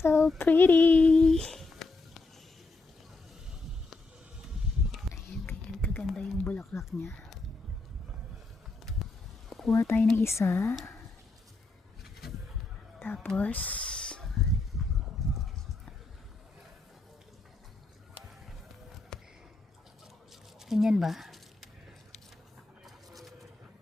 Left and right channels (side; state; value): right; quieter; 3.4 dB